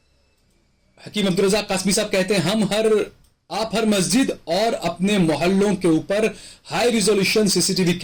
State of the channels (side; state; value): both; identical; correlation 1.00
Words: हकीम अब्दुल रज़ाक कासमी साहब कहते हैं आप हर मस्जिद और अपने मोहल्लों के ऊपर हाई रिजोल्यूशन सीसीटीवी